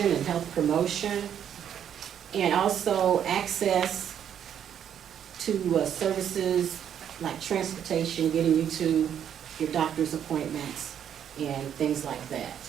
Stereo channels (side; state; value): left; quieter; 9.2 dB